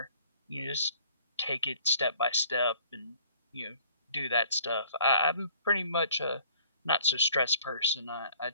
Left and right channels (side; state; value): both; inverted; correlation -0.55